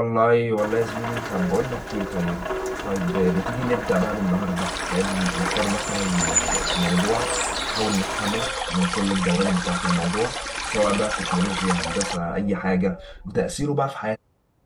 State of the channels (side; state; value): both; identical; correlation 1.00